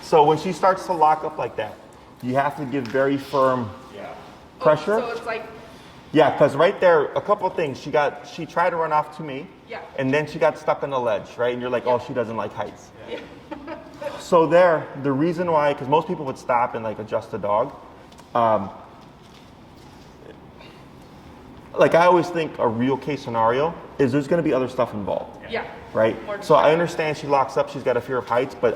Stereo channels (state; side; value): identical; both; correlation 1.00